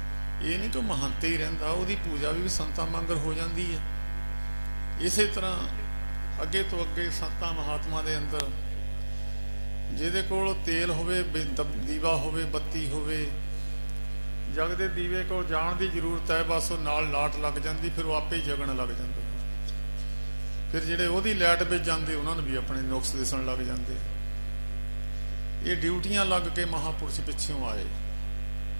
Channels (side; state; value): both; inverted; correlation -1.00